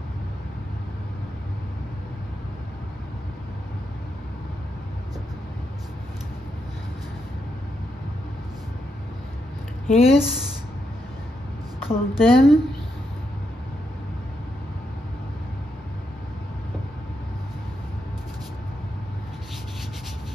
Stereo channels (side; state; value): both; normal; correlation 0.82